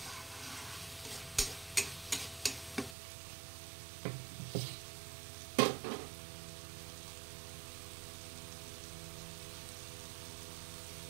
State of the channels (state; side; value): drops out; left; at 3.0 s